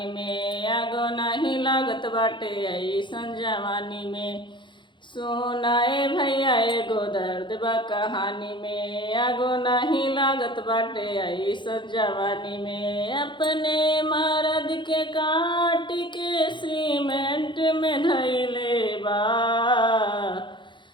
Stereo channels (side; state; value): right; late; 0.23 ms